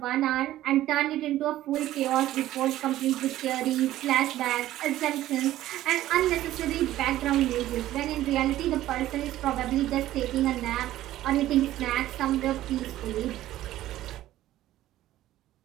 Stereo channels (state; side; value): quieter; left; 14.2 dB